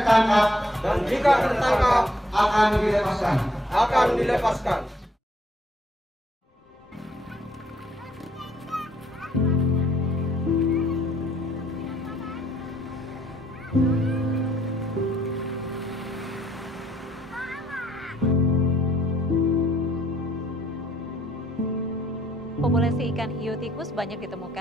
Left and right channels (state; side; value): normal; both; correlation 0.68